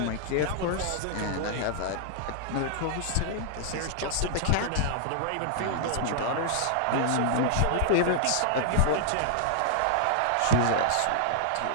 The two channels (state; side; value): different; both; correlation -0.01